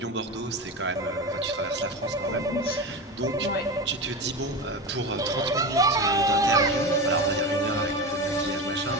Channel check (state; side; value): normal; both; correlation 0.24